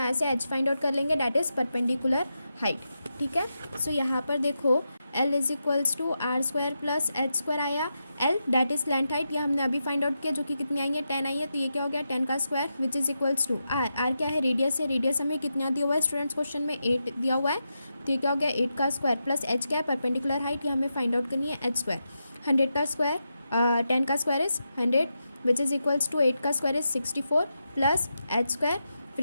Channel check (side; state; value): both; inverted; correlation -0.87